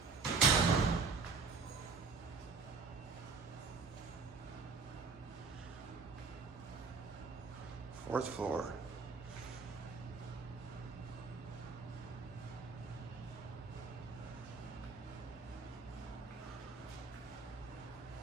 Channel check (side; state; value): left; quieter; 4.7 dB